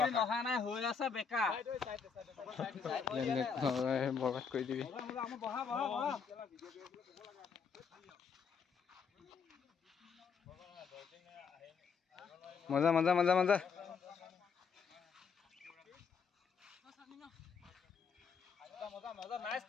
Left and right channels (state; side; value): quieter; right; 5.9 dB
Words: অহা নাই হৈ আছে বেকা বৰবাদ কৰি দিবি বহা বহা বহা মজা মজা মজা মজা মজা মজা nice